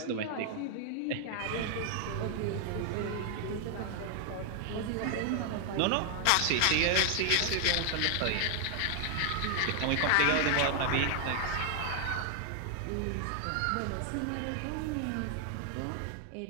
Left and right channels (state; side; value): different; both; correlation 0.00